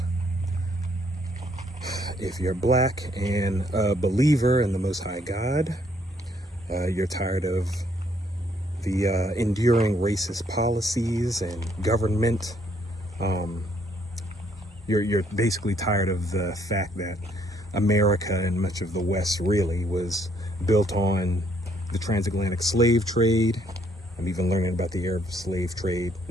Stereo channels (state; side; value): normal; both; correlation 0.68